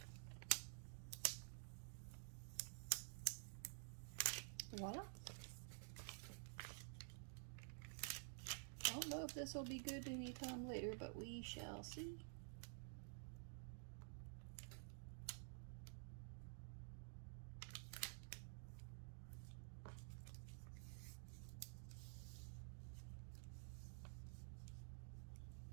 Voila. I don't know if this will be good anytime later, but we shall see.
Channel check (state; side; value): silent; left; digital silence